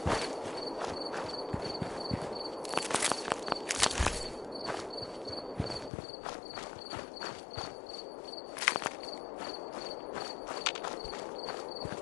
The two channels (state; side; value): drops out; right; at 5.9 s